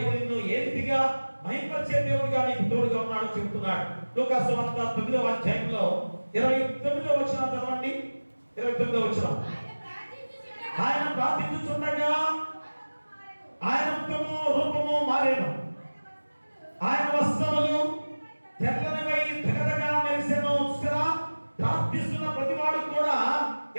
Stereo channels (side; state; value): both; inverted; correlation -1.00